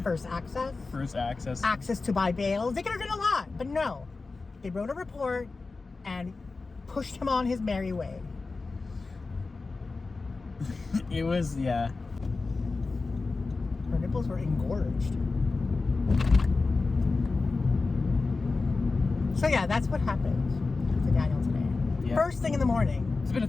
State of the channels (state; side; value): quieter; right; 3.9 dB